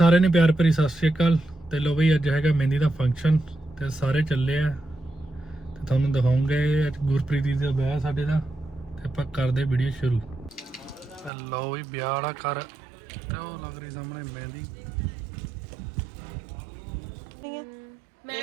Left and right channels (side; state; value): left; drops out; at 11.3 s